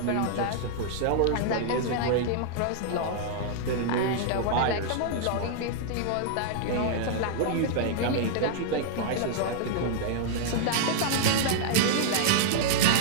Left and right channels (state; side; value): different; both; correlation -0.01